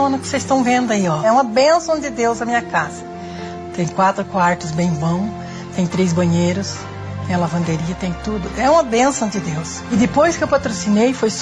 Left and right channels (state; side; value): identical; both; correlation 1.00